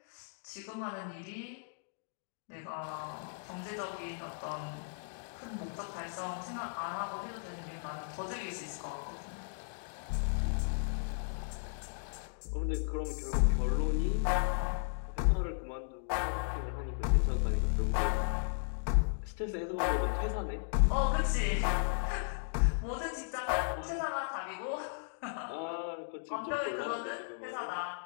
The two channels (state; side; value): silent; right; digital silence